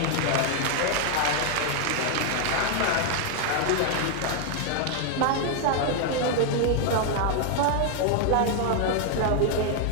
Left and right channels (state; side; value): different; both; correlation 0.00